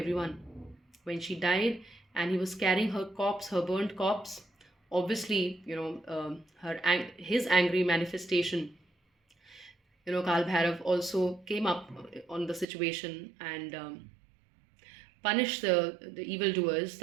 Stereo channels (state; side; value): drops out; left; at 12.7 s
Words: When she died and he was carrying her corpse, her burnt corpse, obviously, his angry manifestation, Kal Bhairav also came up on the situation and punished the evildoers,